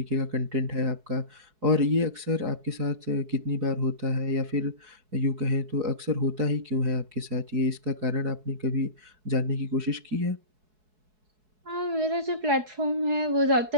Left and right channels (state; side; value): late; left; 4.7 ms